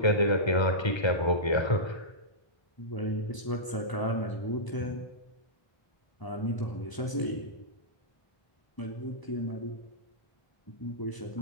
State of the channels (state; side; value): late; right; 1.0 ms